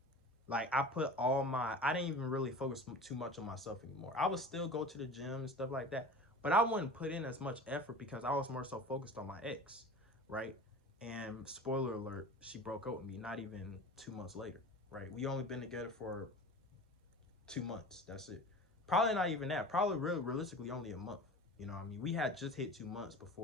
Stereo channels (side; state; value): both; normal; correlation 0.37